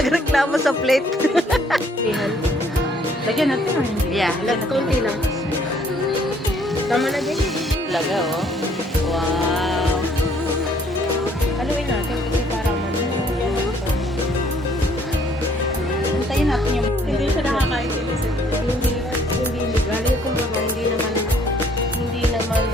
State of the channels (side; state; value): both; normal; correlation 0.63